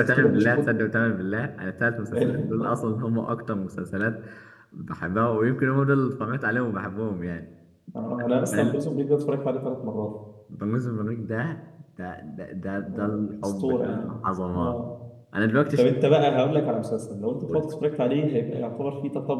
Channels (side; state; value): both; identical; correlation 1.00